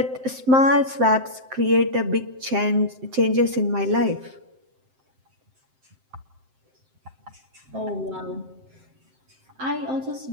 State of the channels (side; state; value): left; late; 7.7 ms